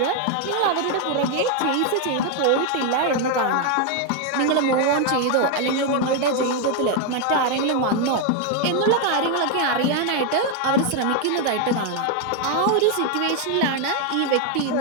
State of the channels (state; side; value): different; both; correlation 0.01